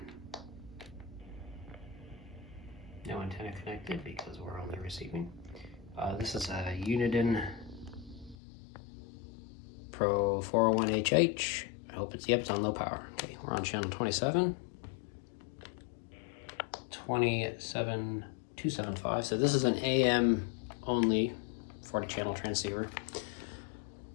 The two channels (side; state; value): right; drops out; at 8.3 s